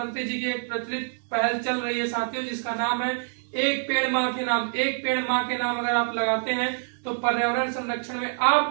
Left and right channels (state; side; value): silent; left; digital silence